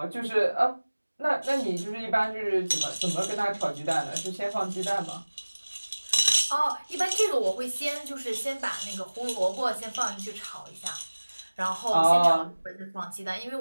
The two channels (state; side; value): inverted; both; correlation -1.00